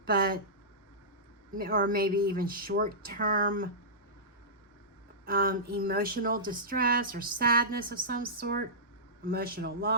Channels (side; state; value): both; normal; correlation -0.17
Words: but or maybe even short-term emotional distress or sadness of some sort, emotional